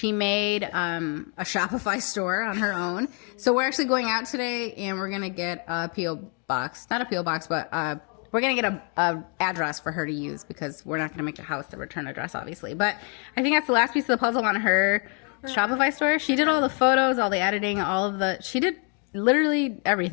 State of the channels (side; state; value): right; quieter; 38.0 dB